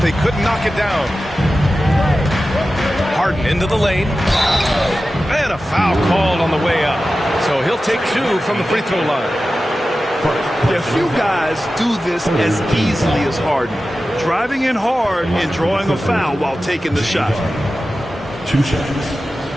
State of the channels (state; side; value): normal; both; correlation 0.94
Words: they couldn't knock it down. Harden into the lane. And a foul called on the way up. So he'll take 2 from the free throw line. Yeah, few guys do this as easily as Harden. Driving in hard and drawing a foul while taking the shot. 2 shots.